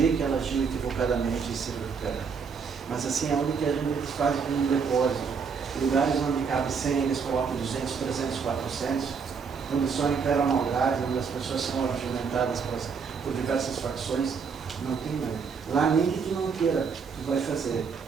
que ela agiu equivocadamente e se recuperar. Mas assim é onde que a gente faz um depósito. lugares onde cabe 100, eles colocam 200, 300, 400, onde só impera a maldade, onde as pessoas são argumentadas por diversas facções, não tem nada. Lá nem que tu não queira, tu vai fazer.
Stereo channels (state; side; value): quieter; left; 5.8 dB